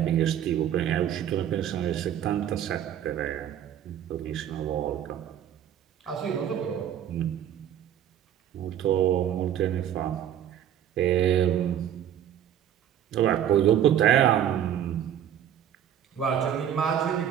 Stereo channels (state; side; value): quieter; left; 10.3 dB